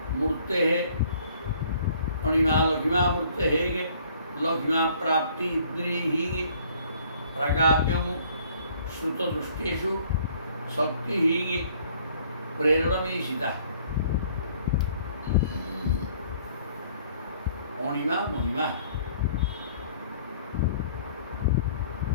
ମୂର୍ତ୍ତେ, ଅଣିମା ଲଘିମା ମୂର୍ତ୍ତେ ହେಗೆ ଲଘିମା ପ୍ରାପ୍ତି ଇନ୍ଦ୍ରିହି ପ୍ରାଗାମ୍ୟଂ ଶ୍ରୁତଦୃଷ୍ଟେଷୁ ଶକ୍ତିଃ ପ୍ରେରଣମୀଶିତା। ଅଣିମା ମହିମା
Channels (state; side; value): inverted; both; correlation -0.58